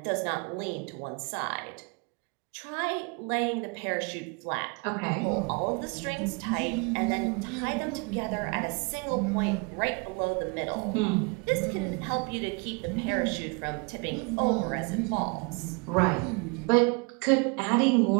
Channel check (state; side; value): quieter; left; 31.8 dB